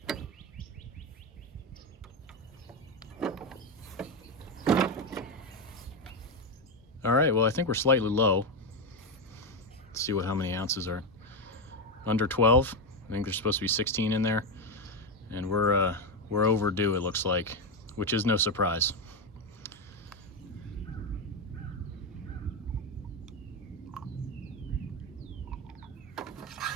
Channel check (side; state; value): both; normal; correlation 0.09